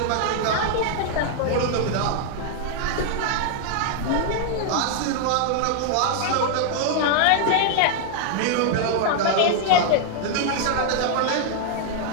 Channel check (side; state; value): both; different; correlation 0.00